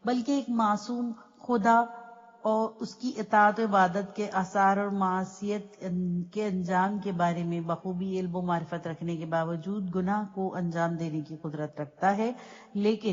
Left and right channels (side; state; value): both; identical; correlation 1.00